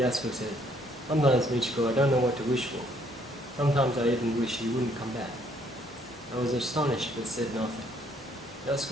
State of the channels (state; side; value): normal; both; correlation 0.66